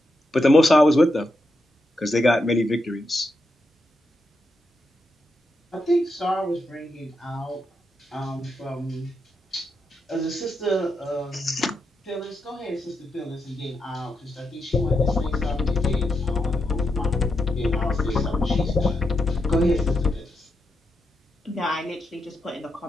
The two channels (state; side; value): normal; both; correlation 0.83